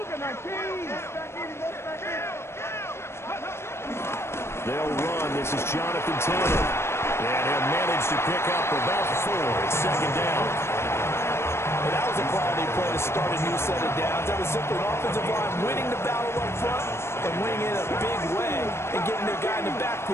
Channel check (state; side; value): late; right; 0.12 ms